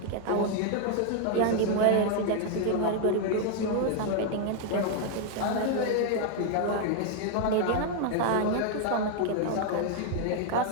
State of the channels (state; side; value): different; both; correlation 0.00